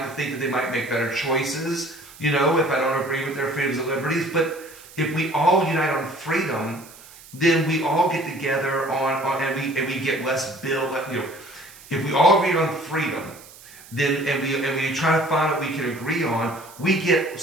to think that they might make better choices, you know, if I don't agree with their freedoms and liberties. But if we all unite on freedom, then we all get together and we get less bill. You know, if we all agree on freedom, then and we try to find what we can agree on, we get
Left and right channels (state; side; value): noise; right; hiss, 20 dB below the sound